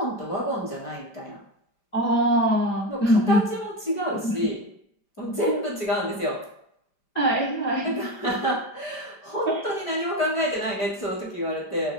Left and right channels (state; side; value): late; right; 5.1 ms